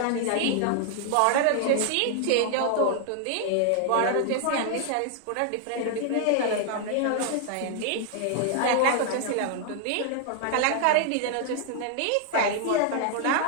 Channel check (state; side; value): different; both; correlation 0.00